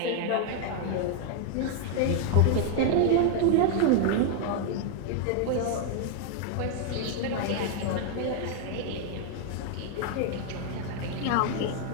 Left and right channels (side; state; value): both; different; correlation 0.00